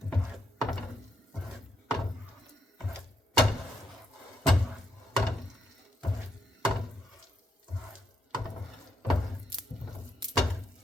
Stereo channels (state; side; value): normal; both; correlation 0.77